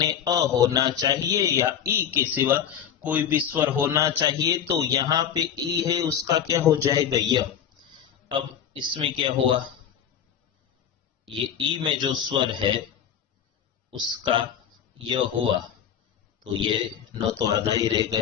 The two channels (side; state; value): right; quieter; 8.9 dB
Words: अ होना चाहिए, या ई के सिवा कोई भी स्वर होना चाहिए। तो यहां पे ई है, उसका क्या हो जाएगा, यह। अब इसमें क्या हुआ, ये ई में जो स्वर है उसका यह हुआ, तो ये न तो आधा ही रह